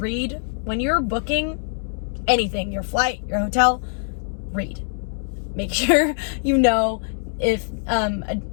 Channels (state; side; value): silent; right; 63 dB below the other